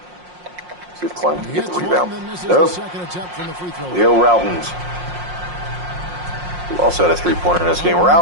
See if Clem can get the rebound. Nope. Leo Routens, who also had a 3-pointer in this game.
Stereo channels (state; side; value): late; left; 5.6 ms